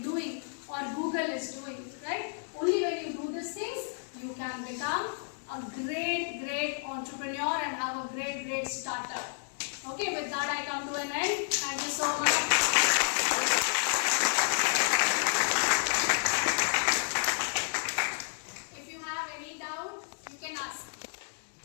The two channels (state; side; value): silent; right; digital silence